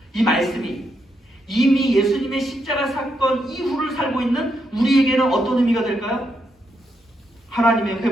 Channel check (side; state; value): both; normal; correlation 0.80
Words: 이 말씀이 이미 예수님의 십자가 사건 이후를 살고 있는 우리에게는 어떤 의미가 될까요? 하나님의